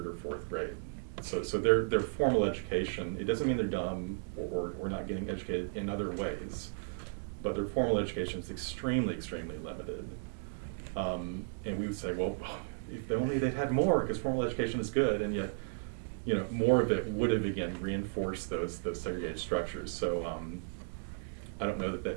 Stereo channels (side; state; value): left; silent; digital silence